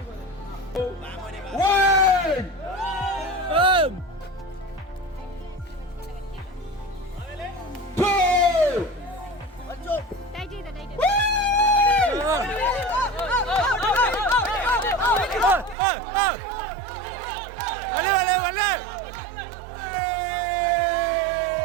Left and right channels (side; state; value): left; drops out; at 15.8 s